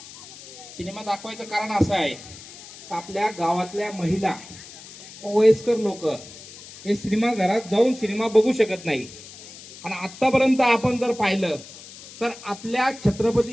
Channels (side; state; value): left; noise; hiss, 17 dB below the sound